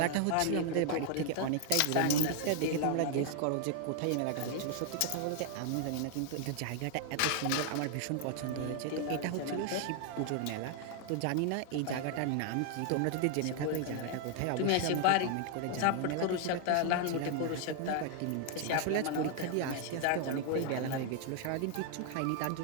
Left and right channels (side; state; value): both; different; correlation 0.00